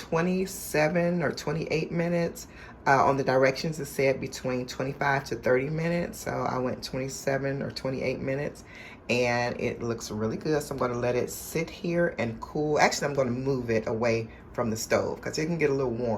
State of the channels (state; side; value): identical; both; correlation 1.00